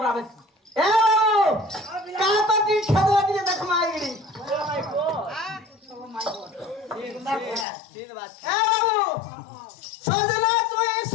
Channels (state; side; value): drops out; right; at 7.7 s